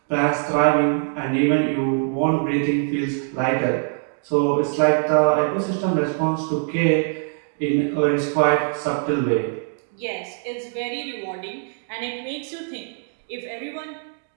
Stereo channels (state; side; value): silent; left; 58 dB below the other